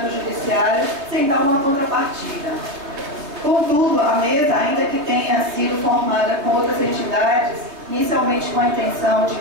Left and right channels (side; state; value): left; late; 3.3 ms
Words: judiciário sem dar uma contrapartida. Contudo, a mesa, ainda que tenha sido formada com outras entidades, inicialmente com a intenção de